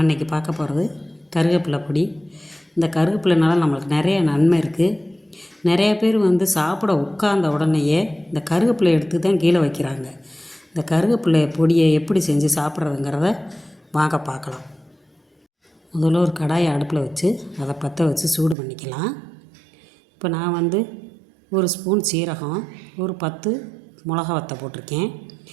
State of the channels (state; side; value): drops out; left; at 18.6 s